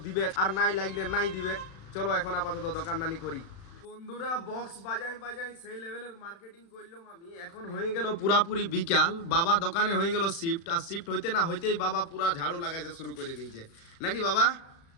দিবে, আর নাই লাগলে নাই দিবে। চলো এখন আপাতত দোকানদানি করি। বন্ধুরা বক্স বাজাই বাজাই সেই লেভেলের মার্কেটিং করলাম আমি। এখন হয়ে গেল পুরাপুরি বিকাল, বাবা দোকানে হয়ে গেল শিফট, আর শিফট হইতে না হইতেই বাবা পুরা ঝাড়ু লাগাইতে শুরু করে দিয়েছে, নাকি বাবা?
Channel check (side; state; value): right; late; 36 ms